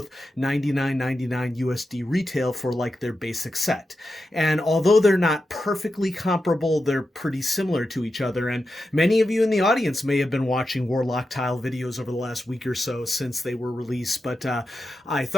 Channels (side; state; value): both; normal; correlation 0.89